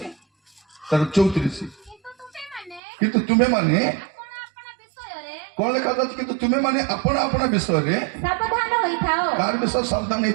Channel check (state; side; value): drops out; left; at 2.8 s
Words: ତାର 34 କିନ୍ତୁ ତୁମେ ମାନେ କଣ ଲେଖା ଯାଉଛି କିନ୍ତୁ ତୁମେ ମାନେ ଆପଣା ଆପଣା ବିଷୟରେ ସାବଧାନ ହୋଇଥାଅ। କାହାର ବିଷୟ ସାବଧାନ